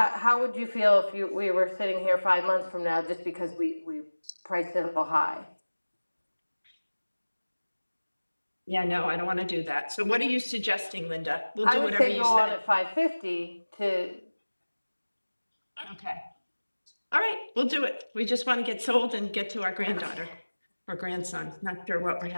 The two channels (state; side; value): inverted; both; correlation -1.00